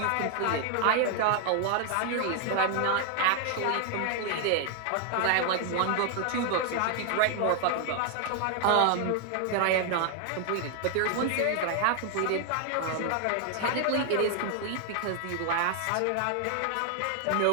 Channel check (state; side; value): different; both; correlation 0.00